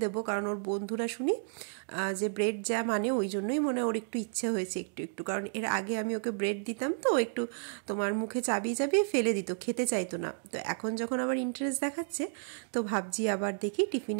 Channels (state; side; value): silent; left; digital silence